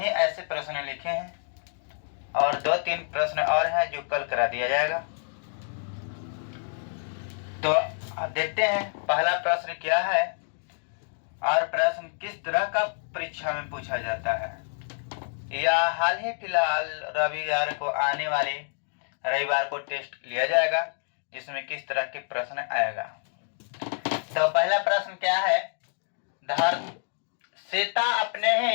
ही ऐसे प्रश्न लिखे हैं और 2-3 प्रश्न और हैं जो कल करा दिया जाएगा। तो अब देखते हैं पहला प्रश्न क्या है और प्रश्न किस तरह का परीक्षा में पूछा जाता है। या हाल ही फिलहाल रविवार को आने वाले रविवार को टेस्ट लिया जाएगा, जिसमें किस तरह के प्रश्न आएगा। तो पहला प्रश्न क्या है, सीता अपने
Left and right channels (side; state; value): right; silent; 60 dB below the other